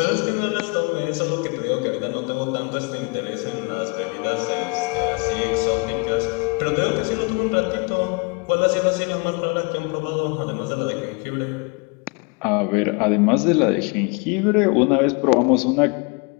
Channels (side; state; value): right; quieter; 31.6 dB